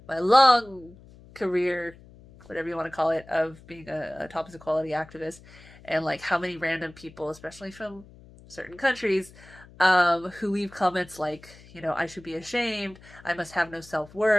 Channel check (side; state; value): left; noise; hum, 22 dB below the sound